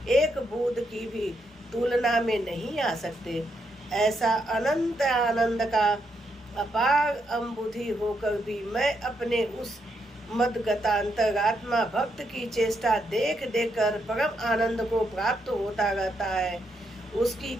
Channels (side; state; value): both; normal; correlation 0.79